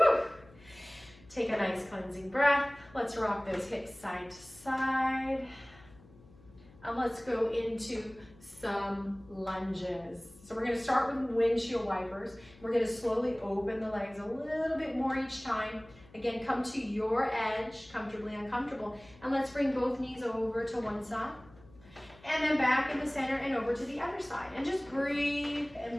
Take a nice cleansing breath. Let's rock those hips side to side. And let's go into some lunges. So we're going to start with windshield wipers. We're going to slowly open the legs a little bit more each time. Again, come to your edge, comfortably uncomfortable. And let's bring both knees over to one side. And then back in the center and over to the other side. And just breathe and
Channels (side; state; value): left; noise; hum, 24 dB below the sound